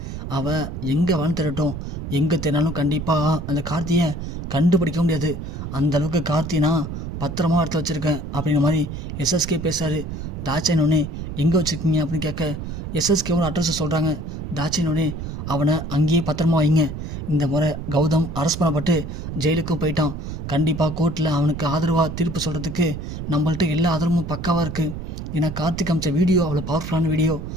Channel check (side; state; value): right; noise; rumble, 7 dB below the sound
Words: அவள் எங்கே வேணும் திரட்டும், எங்கே தேனாலும் கண்டிப்பாக அந்த கார்த்தியை கண்டுபிடிக்க முடியாது. அந்தளவுக்கு கார்த்தினா பத்திரமா எடுத்து வச்சுருக்கேன் அப்படிங்கிற மாதிரி எஸ்எஸ்கே பேசுகிறாரு. தாட்சாயினோடனே எங்கே வச்சுருக்கீங்க அப்படின்னு கேட்க எஸ்எஸ்கேவோட அட்ரஸை சொல்கிறாங்க. தாட்சாயினோடனே அவனை அங்கேயே பத்திரமா வைங்க. இந்த முறை கௌதம் அரெஸ்ட் பண்ணப்பட்டு ஜெயிலுக்கும் போயிட்டான். கண்டிப்பாக கோர்ட்டில் அவனுக்கு ஆதரவாக தீர்ப்பு சொல்கிறதுக்கு நம்மள்ட்ட எல்லா ஆதரவும் பக்காவாக இருக்குது. ஏன்னா கார்த்திக் அமைச்ச வீடியோ அவ்வளோ பவர்ஃபுல்லான வீடியோ.